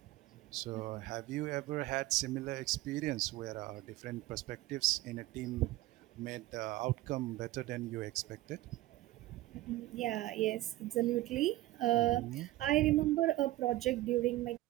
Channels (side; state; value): left; quieter; 16.7 dB